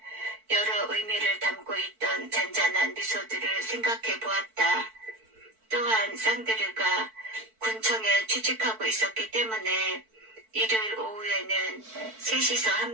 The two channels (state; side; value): late; left; 4.5 ms